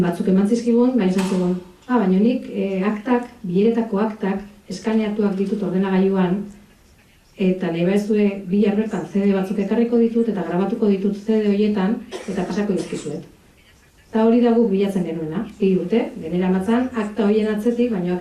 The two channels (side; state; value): both; identical; correlation 1.00